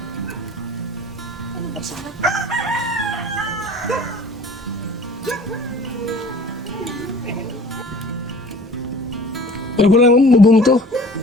Pero ko lang bubong to.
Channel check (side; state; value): both; normal; correlation 0.47